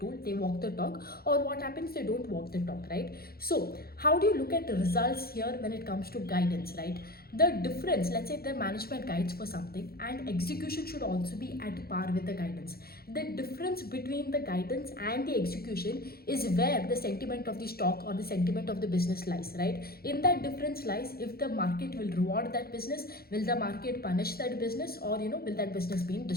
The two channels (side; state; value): right; late; 0.44 ms